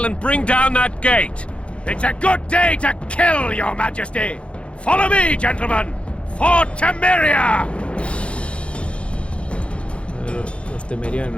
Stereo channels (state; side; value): late; right; 0.060 ms